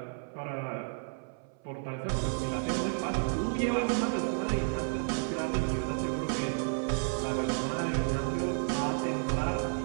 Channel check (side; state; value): left; silent; 57 dB below the other